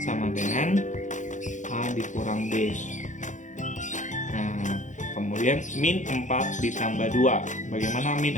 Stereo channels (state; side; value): late; right; 0.36 ms